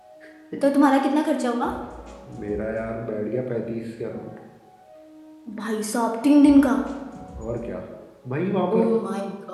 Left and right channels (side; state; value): both; identical; correlation 1.00